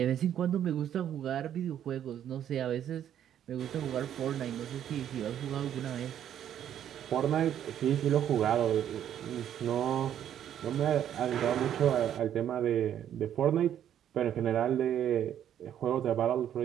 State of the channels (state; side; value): quieter; left; 10.2 dB